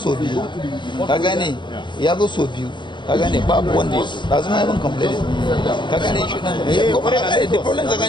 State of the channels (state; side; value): late; right; 0.23 ms